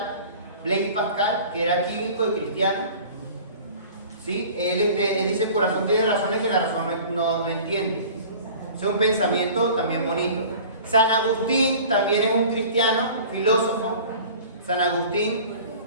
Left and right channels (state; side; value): inverted; both; correlation -0.43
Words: Blaise Pascal, que era químico y cristiano. ¿Sí? Él dice: el corazón tiene razones que la razón no entiende. Es un pensamiento también bonito. San Agustín también es un cristiano, filósofo. San Agustín.